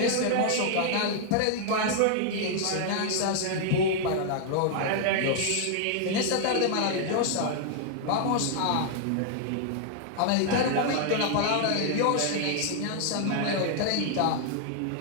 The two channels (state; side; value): different; both; correlation -0.01